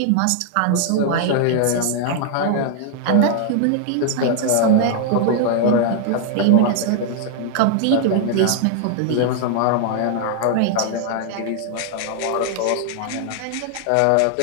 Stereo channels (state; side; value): different; both; correlation 0.00